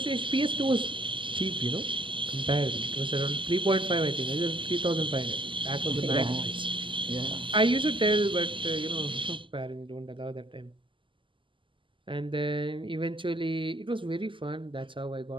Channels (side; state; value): left; late; 0.25 ms